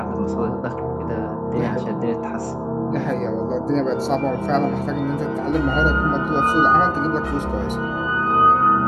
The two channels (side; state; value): both; identical; correlation 1.00